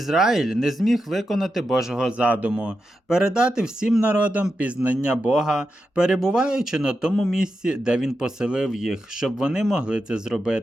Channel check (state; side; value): normal; both; correlation 0.88